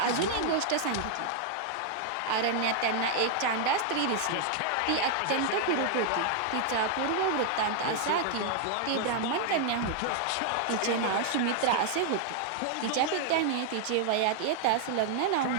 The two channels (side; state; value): both; different; correlation 0.00